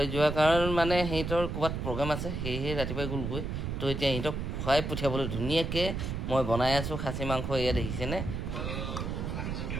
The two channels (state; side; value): noise; right; rumble, 3 dB below the sound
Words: যোৱাৰ কাৰণ মানে সিহঁতৰ ক'ৰবাত প্ৰগ্ৰাম আছে সেয়েহে ৰাতিপুৱাই গ'লগৈ তো এতিয়া সিহঁতক খুৱাই পঠিয়াবলৈ ধুনীয়াকৈ মই বনাই আছোঁ খাচী মাংস এয়া দেখিছেনে